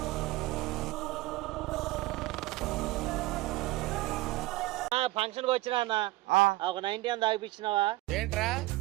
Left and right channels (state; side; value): quieter; left; 18.9 dB